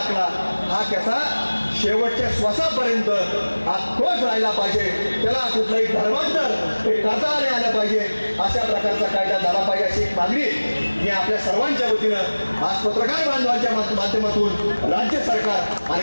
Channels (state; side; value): inverted; both; correlation -1.00